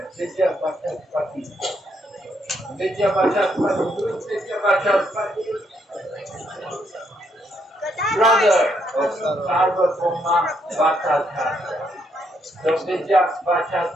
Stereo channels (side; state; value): both; normal; correlation 0.75